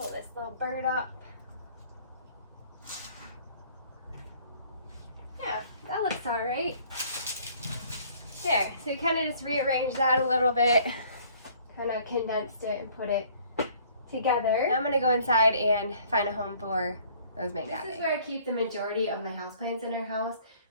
this little bird up. Yeah, that looks alright. There, so you kind of just rearranged that a little bit. Kind of condensed it and put it together. Now I'm going to go inside and find a home for those mangaves. This is where I keep the majority of my houseplants in our house.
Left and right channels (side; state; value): both; inverted; correlation -0.57